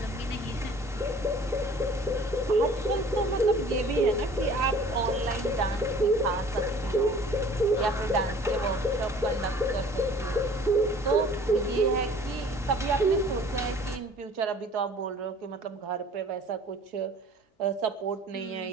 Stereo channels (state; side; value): normal; both; correlation 0.50